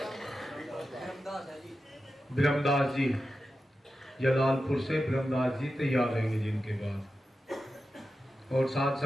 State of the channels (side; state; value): both; normal; correlation 0.91